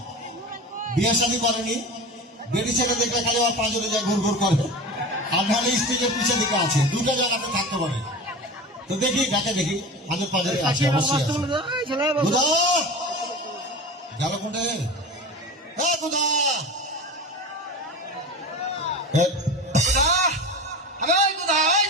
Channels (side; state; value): both; normal; correlation 0.31